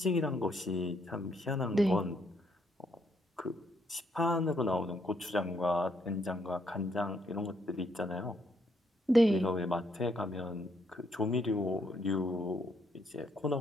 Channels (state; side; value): normal; both; correlation 0.73